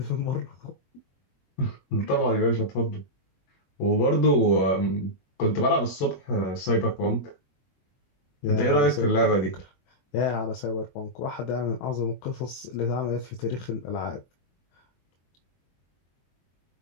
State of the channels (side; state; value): right; late; 22 ms